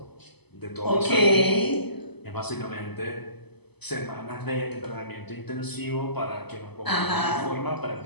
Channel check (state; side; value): late; right; 0.98 ms